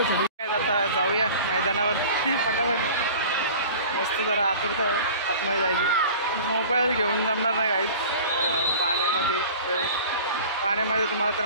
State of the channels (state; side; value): inverted; both; correlation -0.41